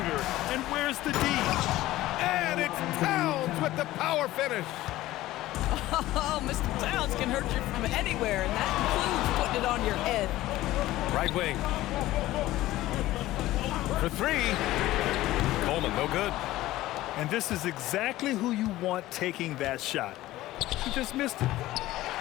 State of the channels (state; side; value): quieter; right; 16.2 dB